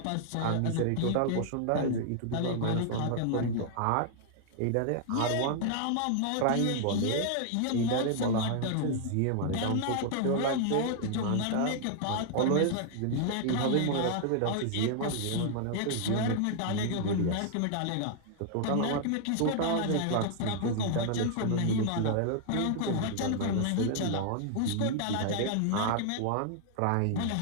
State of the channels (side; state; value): both; different; correlation 0.00